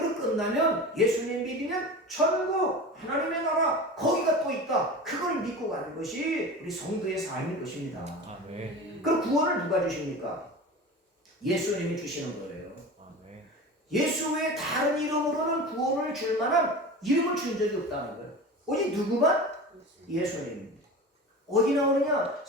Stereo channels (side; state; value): both; normal; correlation 0.32